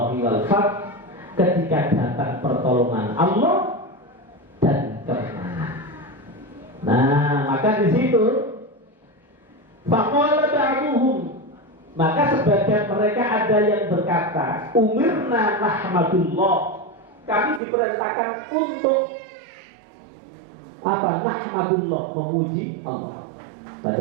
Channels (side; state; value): left; drops out; at 17.6 s